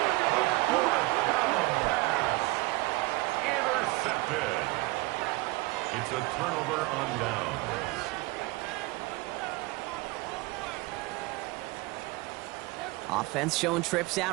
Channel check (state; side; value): quieter; left; 22.5 dB